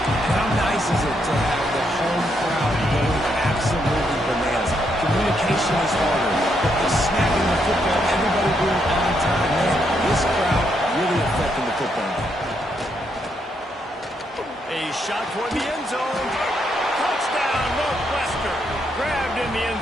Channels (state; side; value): normal; both; correlation 0.77